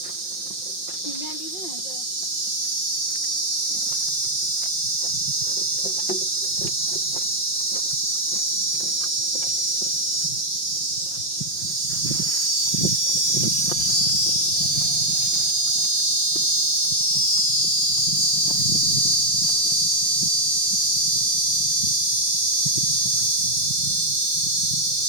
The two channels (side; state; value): right; late; 5.7 ms